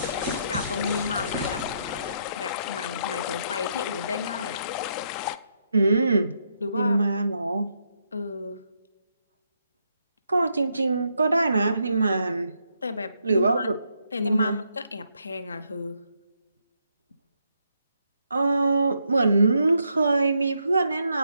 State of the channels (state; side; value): inverted; both; correlation -0.78